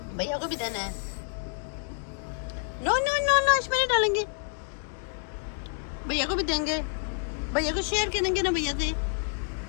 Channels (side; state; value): right; silent; digital silence